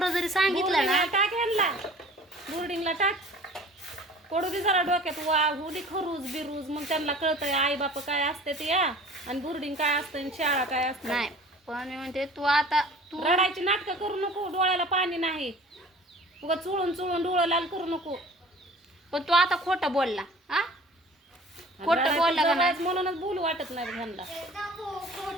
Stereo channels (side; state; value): both; normal; correlation 0.46